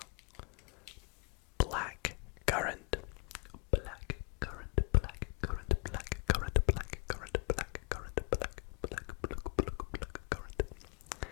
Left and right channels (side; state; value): right; quieter; 31.1 dB